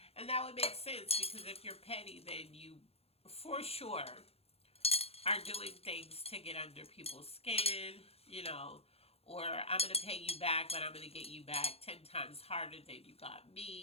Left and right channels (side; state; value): right; late; 0.29 ms